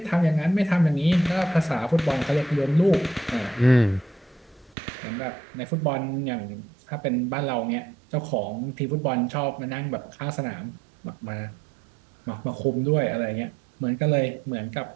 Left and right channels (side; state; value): left; drops out; at 4.8 s